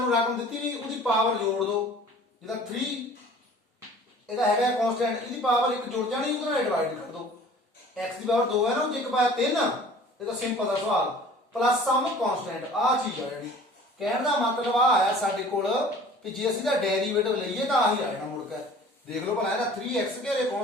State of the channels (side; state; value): both; normal; correlation 0.47